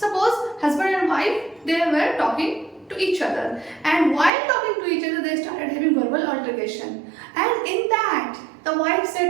suppose husband and wife they were talking to each other, and while talking to each other they started having verbal altercation, and in that the wife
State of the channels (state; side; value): drops out; left; at 4.3 s